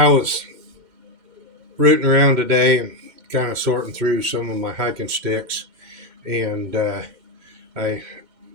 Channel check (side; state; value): left; late; 2.1 ms